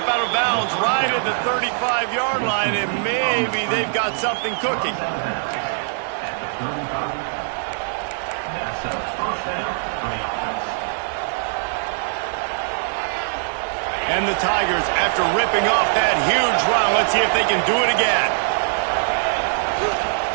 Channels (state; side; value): silent; left; digital silence